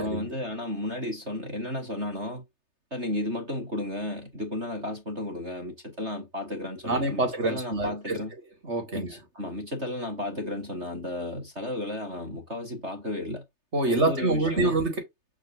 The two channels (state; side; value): late; left; 3.3 ms